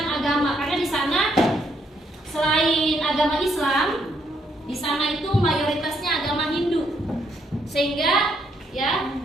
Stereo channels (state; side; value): normal; both; correlation 0.73